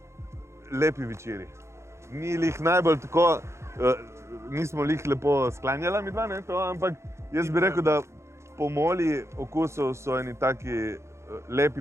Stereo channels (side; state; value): left; late; 0.13 ms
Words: Lepi večeri. Ni lih najbolj tako, nismo lih lepo sklanjala midva, ne, to, ampak jaz bi rekel, da pomoli okusov so eni taki lepi